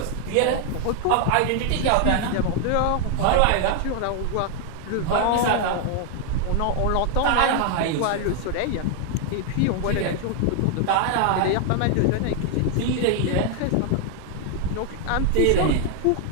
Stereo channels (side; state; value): both; different; correlation 0.00